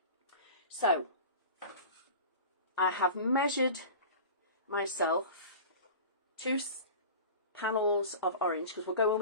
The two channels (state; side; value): inverted; both; correlation -0.36